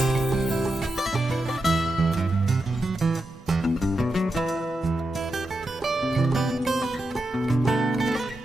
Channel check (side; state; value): both; normal; correlation 0.88